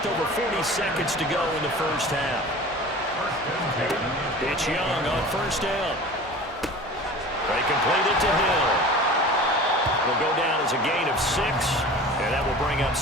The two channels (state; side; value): normal; both; correlation 0.38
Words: over 40 seconds to go in the first half. It's Young on first down. They complete it to Hill. It'll go down as a gain of 6, and that will bring up